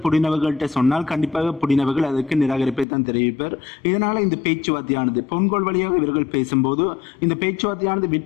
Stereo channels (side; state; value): right; drops out; at 2.9 s